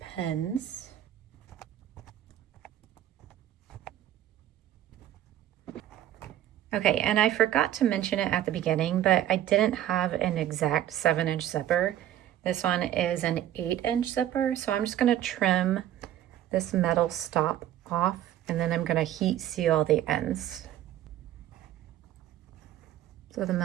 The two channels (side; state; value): left; quieter; 12.0 dB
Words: pins. Okay, and I forgot to mention it at the beginning, but I didn't have an exact 7-inch zipper. This one is an 8-inch zipper, so I'm just going to trim this metal stop off, and then I'm going to heat seal the ends. So the